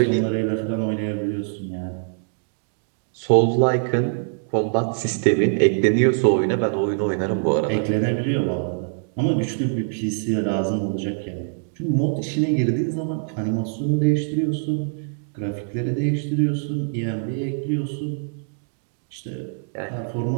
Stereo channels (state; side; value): silent; left; digital silence